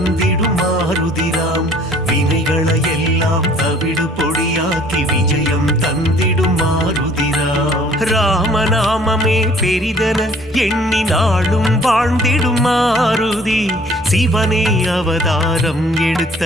மாருதிராம். வினைகளை எல்லாம் தவிடு பொடியாக்கி விஜயம் தந்திடும் மாருதிராம். ராமநாமமே பெரிதன எண்ணி நாளும் வாழ்ந்திடும் மாருதி. சிவனே அவதாரம்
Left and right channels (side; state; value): both; normal; correlation 0.55